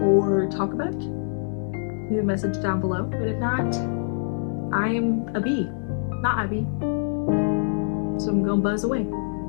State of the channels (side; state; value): right; silent; 57 dB below the other